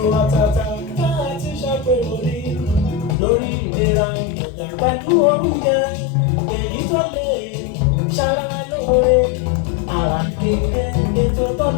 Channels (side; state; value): right; drops out; at 3.2 s